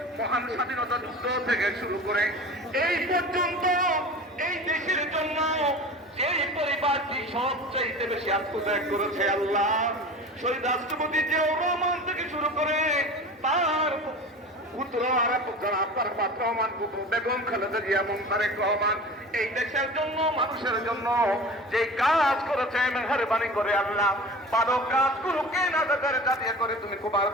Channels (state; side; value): normal; both; correlation 0.36